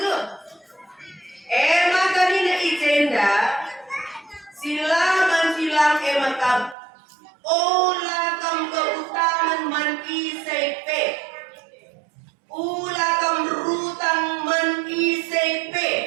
maka nina ijenda silang makam ola kam keutaman man isepe ula kam rutang man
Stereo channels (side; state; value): left; drops out; at 6.8 s